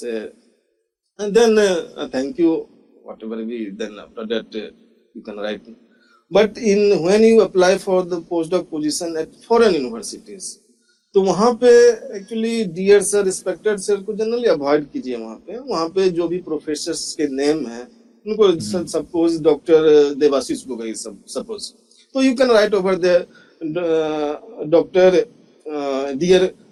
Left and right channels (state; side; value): identical; both; correlation 1.00